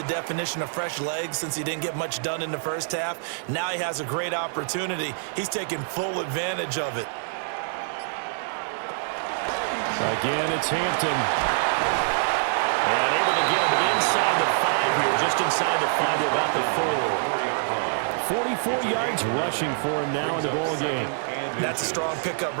definition of fresh legs since he didn't get much done in the first half? Now he has a great opportunity. He's taking full advantage of it. Again, it's Hampton. And able to get him inside the 5 here, just inside the 5 to about the 4. 44 yards rushing for him now in the ball game. That's a strong pickup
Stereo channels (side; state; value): left; silent; 61 dB below the other